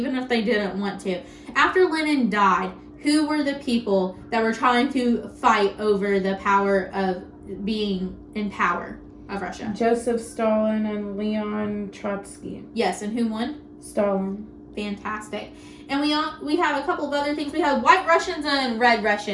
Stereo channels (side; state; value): both; identical; correlation 1.00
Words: if they didn't want to. After Lenin died, who were the people that were trying to fight over the power of being in power of Russia? Joseph Stalin and Leon Trotsky. Yes, and who won? Stalin. Fantastic. And we have a couple of other things. We have white Russians and red